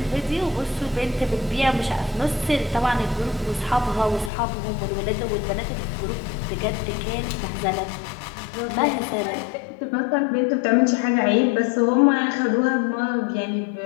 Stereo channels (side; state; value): right; drops out; at 4.3 s